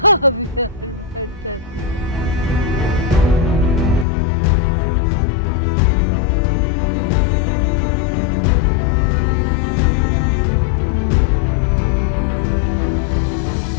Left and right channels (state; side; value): drops out; right; at 4.0 s